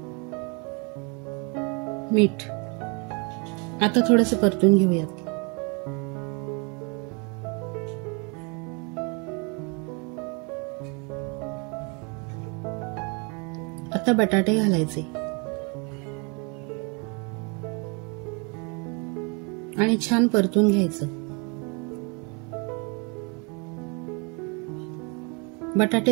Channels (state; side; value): quieter; left; 33.0 dB